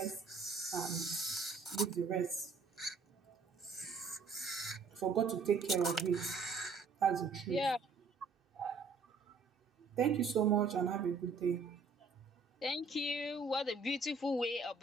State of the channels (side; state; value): left; quieter; 4.3 dB